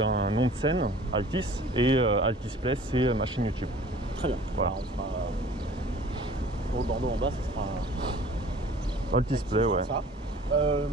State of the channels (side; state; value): both; normal; correlation 0.48